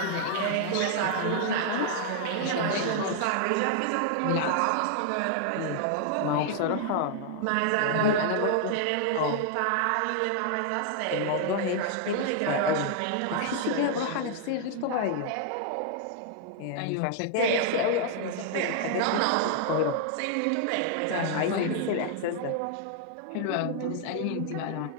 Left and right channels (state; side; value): different; both; correlation -0.01